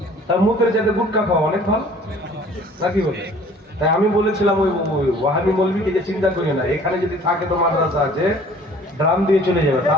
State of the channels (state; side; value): normal; both; correlation 0.51